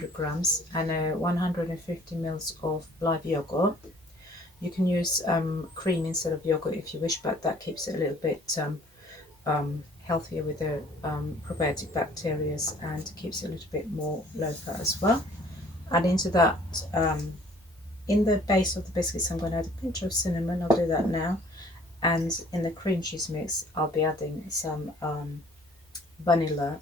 grams, and 150 mils of live yogurt. You can use cream instead of yogurt if you wish, but that keeps it a little bit healthier with the probiotic bacteria, and keeps it a little bit more low fat as well. And into that, in the base of the biscuits, I'm going to add a pinch of cinnamon. I'll do that now. And in the cream cheese mix, I'll be adding some vanilla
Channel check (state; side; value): normal; both; correlation 0.55